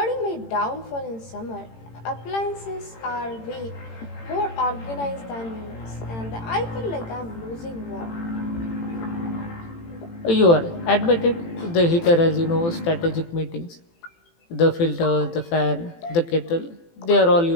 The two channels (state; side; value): late; right; 18 ms